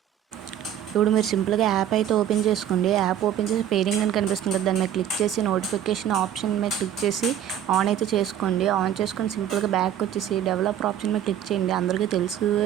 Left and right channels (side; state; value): left; quieter; 10.3 dB